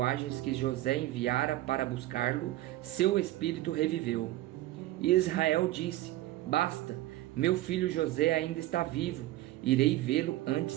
que José enviara para buscá-lo, seu espírito reviveu. E Israel disse: "Basta, meu filho José ainda está vivo, irei vê-lo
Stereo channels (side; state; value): left; quieter; 15.9 dB